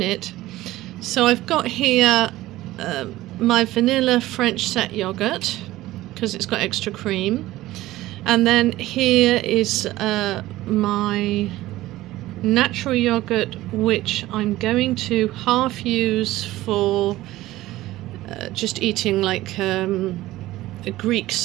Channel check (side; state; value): left; quieter; 16.5 dB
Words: So I've got here my vanilla French set yogurt, because it's got extra cream, and then here is my natural yogurt, which I'm going to half use for just eating like a Greek